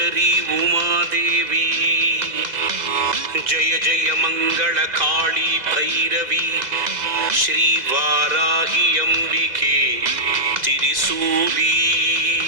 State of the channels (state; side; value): late; left; 2.0 ms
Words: உமாதேவி. ஜய ஜய மங்கள காளி பைரவி ஸ்ரீ வாராகி அம்பிகே திரிசூலி.